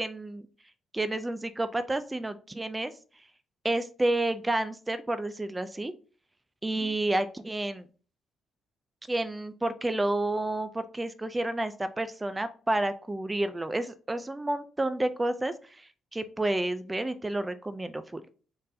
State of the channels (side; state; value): both; normal; correlation 0.96